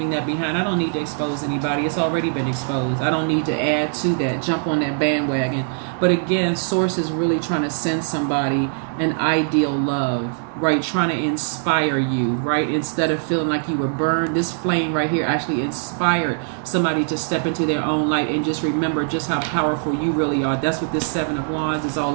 that behind. I don't need to expose anybody. It's already been exposed. I don't need to add to that, jump on that bandwagon. But again, Source is really trying to send somebody an ideal love, right? Trying to inspire you, right? Instead of feeling like you were burned, this flame right here actually inspired somebody to step into their own light and just remember just how powerful you really are. That's what this Seven of Wands is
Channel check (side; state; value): left; silent; digital silence